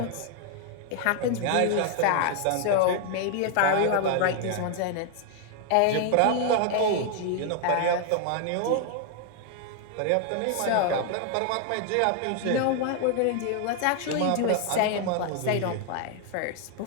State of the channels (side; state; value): both; different; correlation 0.00